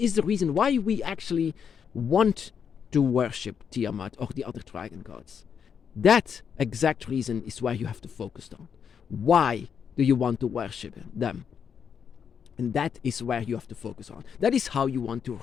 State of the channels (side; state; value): right; quieter; 7.3 dB